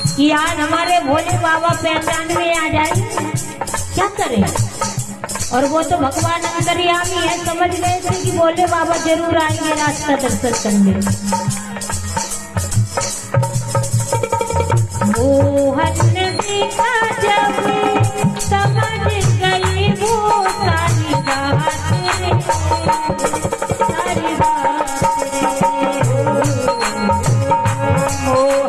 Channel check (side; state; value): both; identical; correlation 1.00